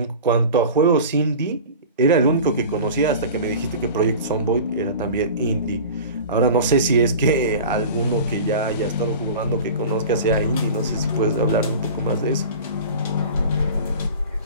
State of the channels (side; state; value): both; inverted; correlation -0.36